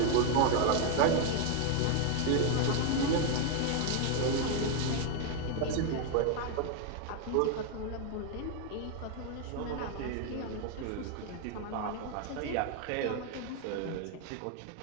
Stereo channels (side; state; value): both; different; correlation 0.01